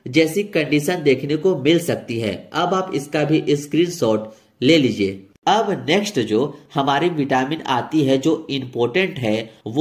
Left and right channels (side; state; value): both; identical; correlation 1.00